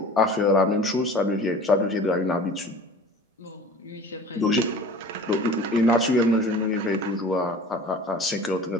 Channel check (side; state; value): both; normal; correlation 0.42